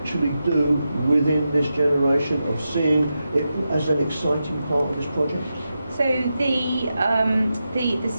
do within this generation, of seeing it as an exciting part of this project? So the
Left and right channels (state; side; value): inverted; both; correlation -0.89